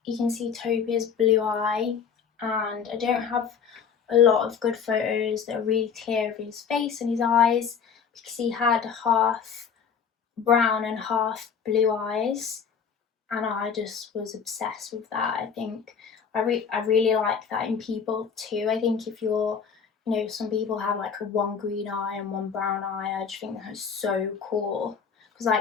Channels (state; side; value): quieter; right; 6.7 dB